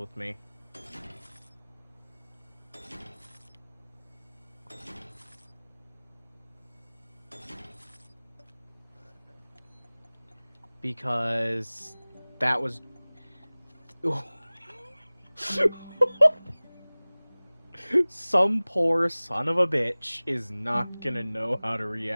me. Because that was... Some poor son of a bitch is not gonna know how to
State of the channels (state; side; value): inverted; both; correlation -1.00